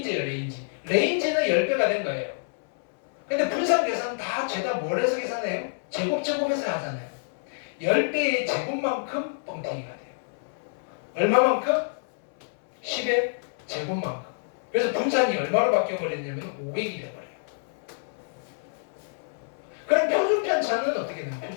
레인지. 레인지는 10배가 된 거예요. 근데 분산 계산 다 죄다 뭘 해서 계산해요? 제곱해서 하잖아요. 10배의 제곱만큼 뻥튀기가 돼요. 얼마만큼? 10의 제곱만큼. 그래서 분산이 얼마로 바뀌어버렸냐면 500이 돼버려요. 그럼 표준편차는 어떻게 되나요?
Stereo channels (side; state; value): right; silent; 60 dB below the other